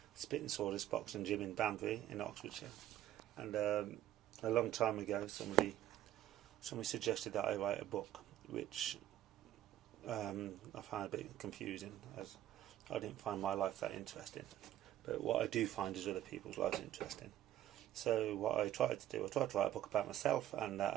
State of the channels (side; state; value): left; quieter; 12.8 dB